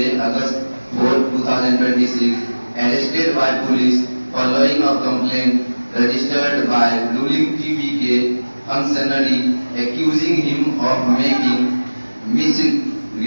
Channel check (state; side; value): inverted; both; correlation -1.00